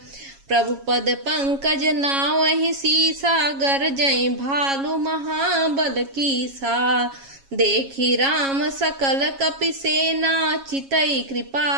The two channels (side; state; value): left; late; 7.3 ms